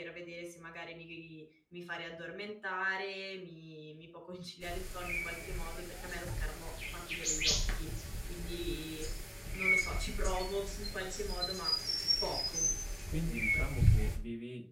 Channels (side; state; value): both; identical; correlation 1.00